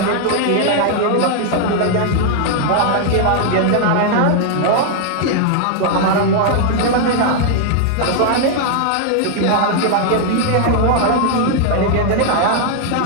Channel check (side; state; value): both; different; correlation 0.00